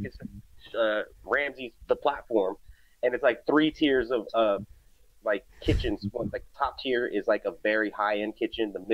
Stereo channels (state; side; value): identical; both; correlation 1.00